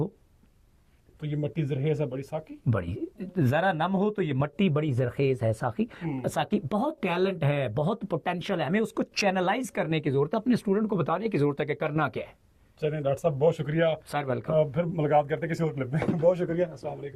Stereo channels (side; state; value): both; identical; correlation 1.00